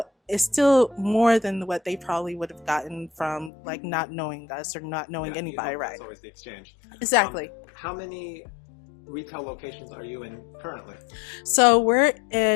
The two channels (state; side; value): drops out; right; at 3.5 s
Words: it's still more than what they probably would have gotten from like not knowing us or not knowing anybody, right? It's always the exchange. Exactly. How many retail locations are you in currently? So we're